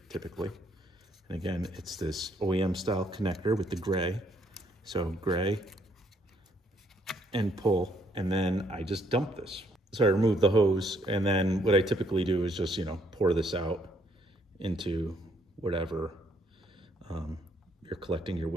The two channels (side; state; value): both; normal; correlation 0.69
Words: typically. And again, it's this OEM style connector with the gray. So gray and pull, and then I just dump this. So I remove the hose, and then what I typically do is just, pour this out into whatever you're collecting your